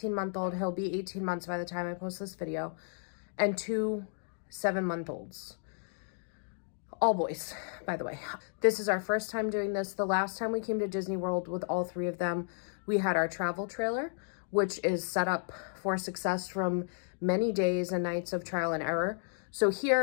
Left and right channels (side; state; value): right; silent; digital silence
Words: He'll be 18 months by the time I post this video, and 2 7-month-olds. All boys, by the way. This is our first time doing this. The last time we came to Disney World with all 3 of them, we had our travel trailer, which is set up for success from many days and nights of trial and error. So